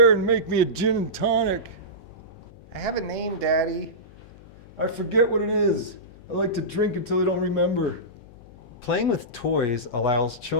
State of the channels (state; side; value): noise; left; hum, 22 dB below the sound